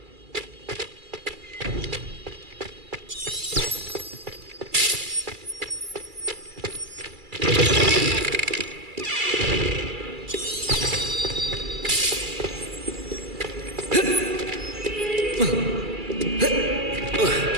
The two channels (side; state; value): left; late; 2.3 ms